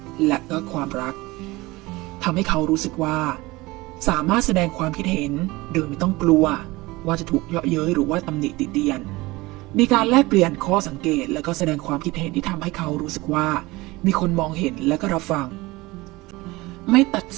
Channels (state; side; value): quieter; left; 21.2 dB